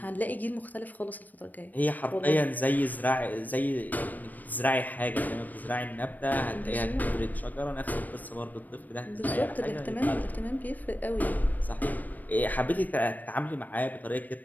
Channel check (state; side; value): late; right; 0.084 ms